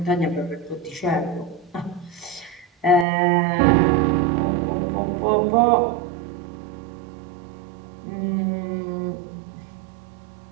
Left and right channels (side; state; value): left; drops out; at 3.1 s